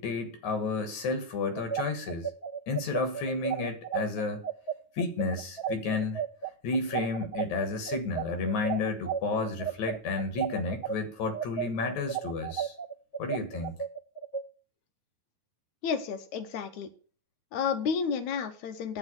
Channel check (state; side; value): late; right; 9.3 ms